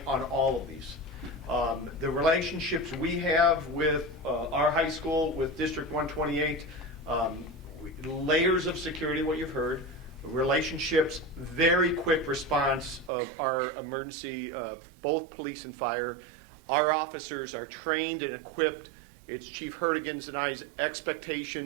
on all of these. The relationships we have with our high school, with District 128, layers of security, what you've heard, relationships, very quick response of our emergency, both police and fire. Our officers are trained and equipped. It's Chief Hertigan's and I's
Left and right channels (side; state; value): left; drops out; at 13.1 s